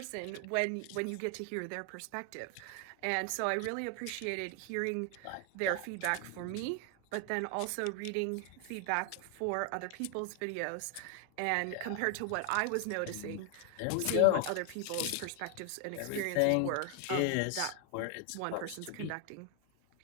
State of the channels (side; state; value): both; different; correlation 0.00